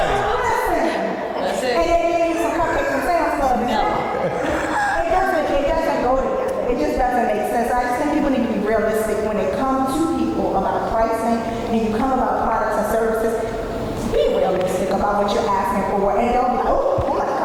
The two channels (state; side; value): identical; both; correlation 1.00